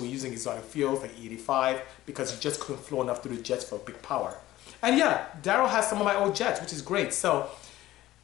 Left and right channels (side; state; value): right; quieter; 15.7 dB